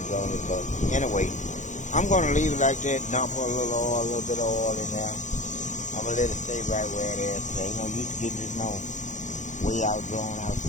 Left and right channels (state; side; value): late; right; 0.35 ms